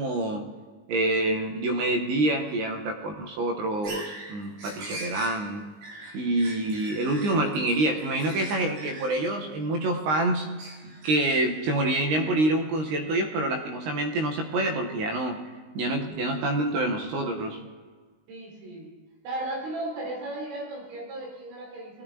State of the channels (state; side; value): late; left; 19 ms